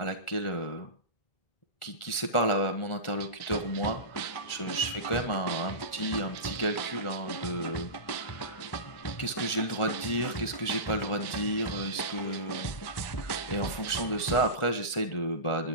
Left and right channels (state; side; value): late; right; 1.4 ms